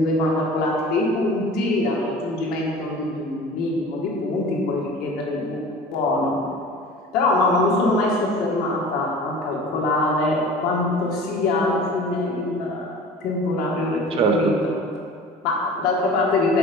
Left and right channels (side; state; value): both; normal; correlation 0.41